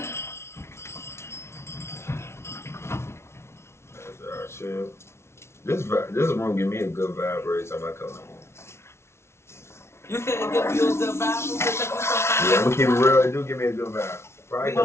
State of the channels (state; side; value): late; right; 0.13 ms